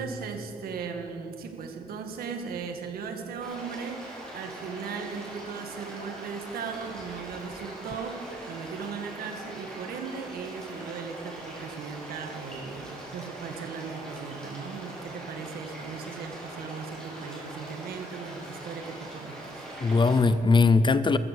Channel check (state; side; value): normal; both; correlation 0.70